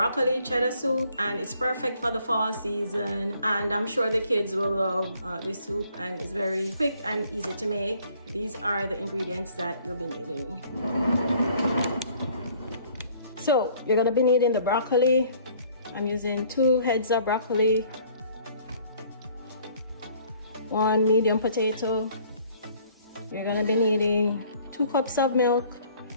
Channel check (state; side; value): inverted; both; correlation -0.58